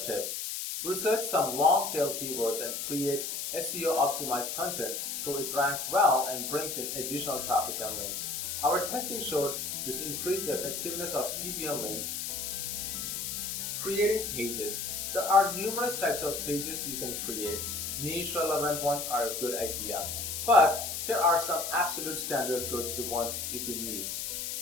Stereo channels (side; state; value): left; noise; hiss, 4 dB below the sound